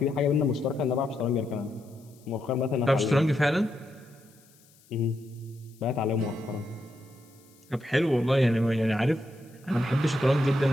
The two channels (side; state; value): left; noise; hiss, 29 dB below the sound